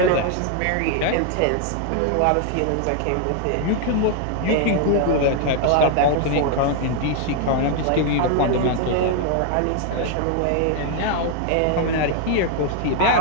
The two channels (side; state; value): both; different; correlation 0.00